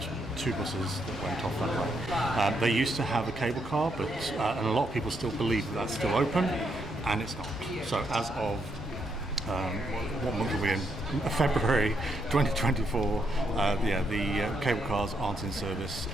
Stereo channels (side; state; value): both; normal; correlation 0.77